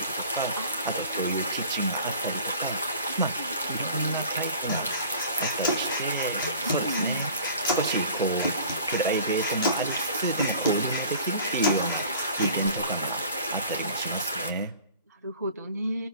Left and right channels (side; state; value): both; inverted; correlation -0.45